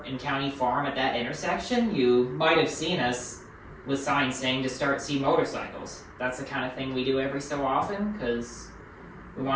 in County Farm at that intersection, you might have seen us with signs saying to see motorcycles. That's the kind of thing we do every so often, because we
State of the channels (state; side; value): identical; both; correlation 1.00